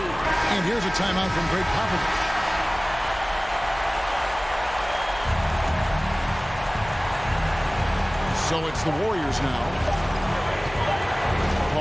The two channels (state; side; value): noise; left; hum, 17 dB below the sound